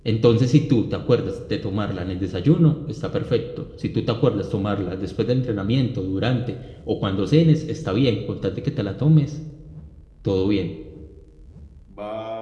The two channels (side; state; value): both; identical; correlation 1.00